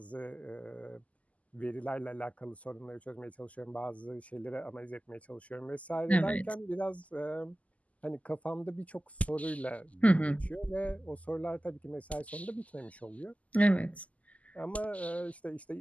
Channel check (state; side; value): late; right; 0.071 ms